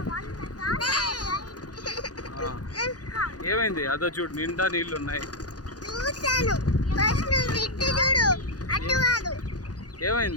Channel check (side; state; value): right; late; 0.68 ms